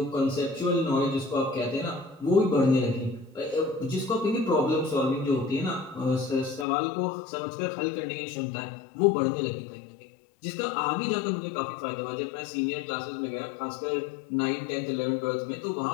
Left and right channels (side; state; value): right; drops out; at 6.7 s